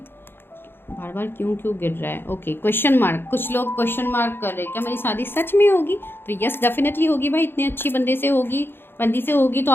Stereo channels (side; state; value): right; late; 0.10 ms